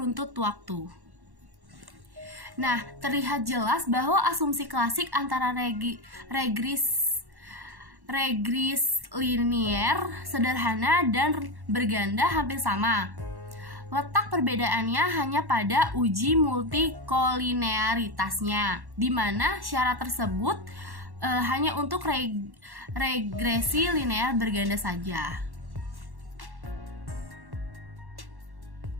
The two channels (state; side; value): late; left; 1.1 ms